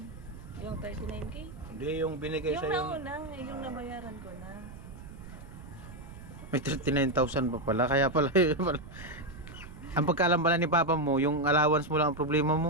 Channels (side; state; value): right; noise; rumble, 15 dB below the sound